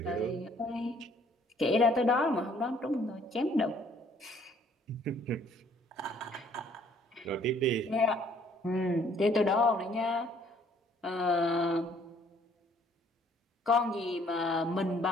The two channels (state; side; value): normal; both; correlation 0.61